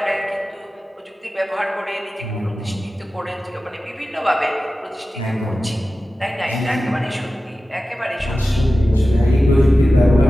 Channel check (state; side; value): normal; both; correlation 0.95